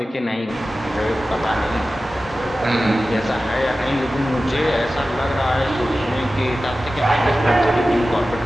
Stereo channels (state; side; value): normal; both; correlation 0.95